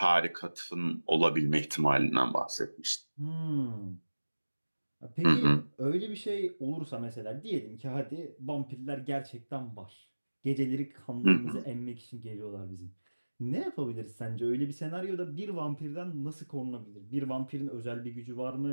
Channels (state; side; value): inverted; both; correlation -1.00